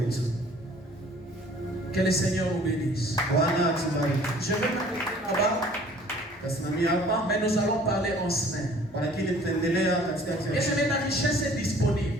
Que le Seigneur nous bénisse. Je vais m'arrêter là-bas. Mais nous allons parler en semaine. Et la richesse est disponible.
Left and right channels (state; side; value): normal; both; correlation 0.52